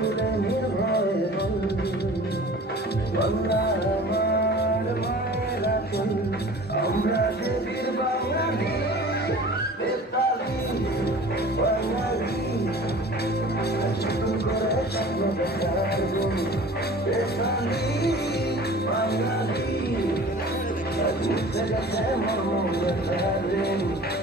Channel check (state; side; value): normal; both; correlation 0.43